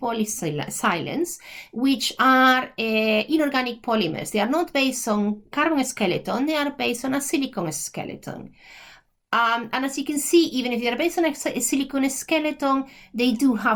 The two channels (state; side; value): identical; both; correlation 1.00